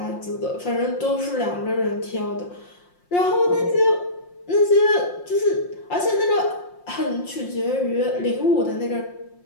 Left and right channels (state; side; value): late; right; 5.6 ms